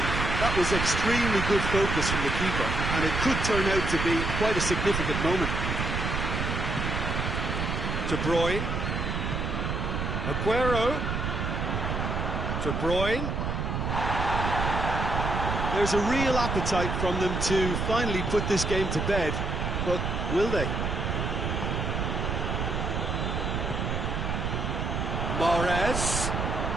That was extremely good focus from the keeper, and it could turn out to be quite a significant moment. De Bruyne. Aguero. De Bruyne. There's a real appetite from them to finally put this game to bed, but will they? Mahrez.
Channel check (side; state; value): right; noise; rumble, 1 dB below the sound